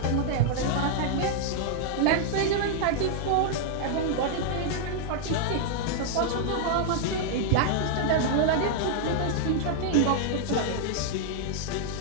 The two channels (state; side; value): different; both; correlation 0.00